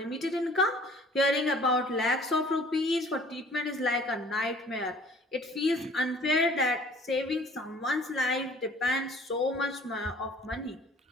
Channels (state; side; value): normal; both; correlation 0.52